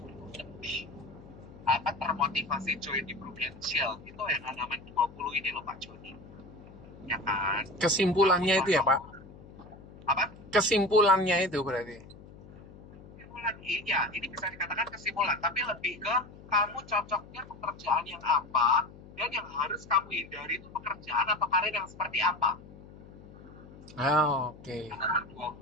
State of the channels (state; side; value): noise; left; hum, 19 dB below the sound